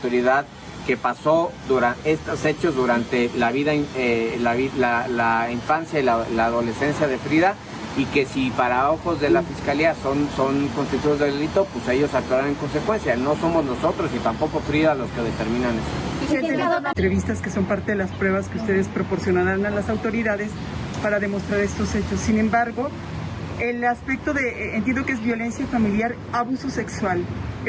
que pasó estos hechos durante la vida, la infancia y la adolescencia de Frida, y que si para ojos de la Fiscalía son constituidos de delito, pues ellos actuarán en consecuencia. No somos nosotros y tampoco Frida los que determinan eso. Entrevistas que son parte de las pruebas que ustedes proporcionarán a las autoridades para demostrar estos hechos. Sin embargo, el aspecto de, entiendo que es violencia familiar, abuso sexual.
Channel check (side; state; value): both; identical; correlation 1.00